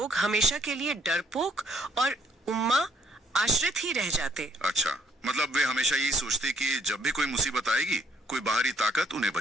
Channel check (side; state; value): both; normal; correlation 0.66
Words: हमेशा के लिए डरपोक और उम्मा आश्रित ही रह जाते। अच्छा, मतलब वे हमेशा यही सोचते कि जब भी कोई मुसीबत आएगी कोई बाहरी ताकत उन्हें